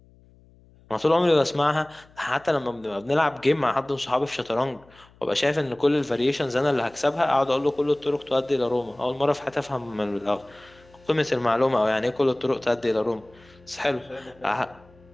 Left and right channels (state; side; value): noise; left; hum, 28 dB below the sound